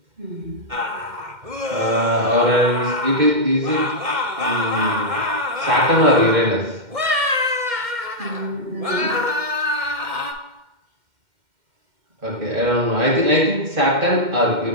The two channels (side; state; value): left; late; 2.1 ms